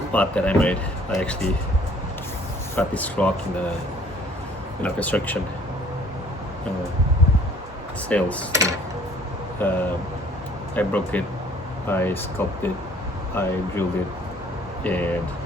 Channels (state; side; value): normal; both; correlation 0.56